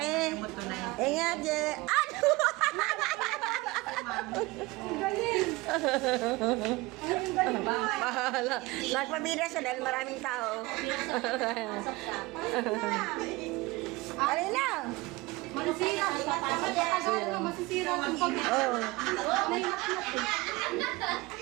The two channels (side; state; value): left; quieter; 22.0 dB